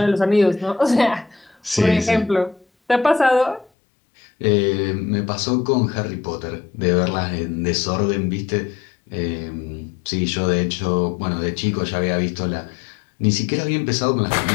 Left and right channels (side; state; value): right; drops out; at 3.7 s